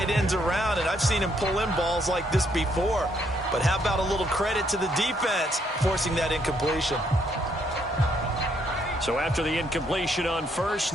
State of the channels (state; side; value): normal; both; correlation 0.71